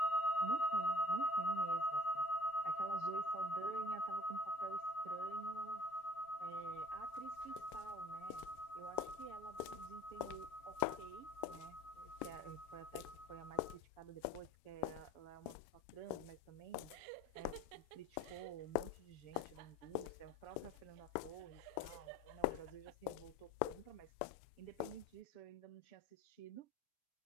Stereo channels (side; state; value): right; late; 7.0 ms